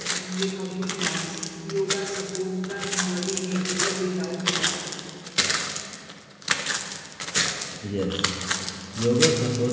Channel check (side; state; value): both; identical; correlation 1.00